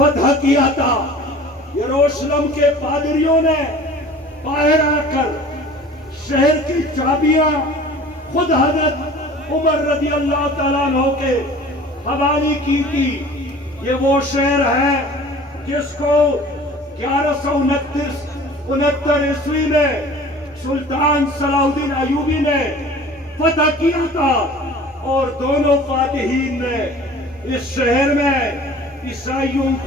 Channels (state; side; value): normal; both; correlation 0.44